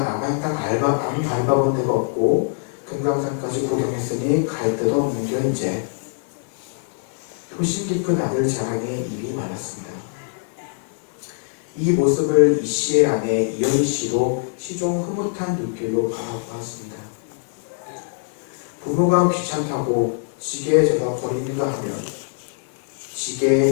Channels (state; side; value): silent; right; 57 dB below the other